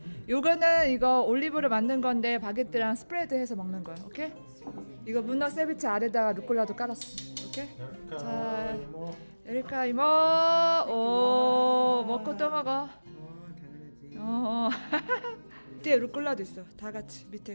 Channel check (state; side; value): inverted; both; correlation -1.00